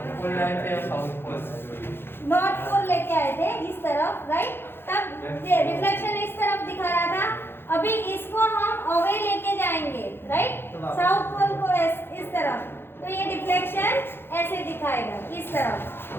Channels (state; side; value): late; right; 0.11 ms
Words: तरफ, राइट? तब रिफ्लेक्शन इस तरफ दिखा रहा था। अभी इसको हम अवे लेके जाएंगे, राइट? साउथ पोल को इस तरफ, तो ये डिफ्लेक्शन ऐसे दिखाएगा, इस तरफ।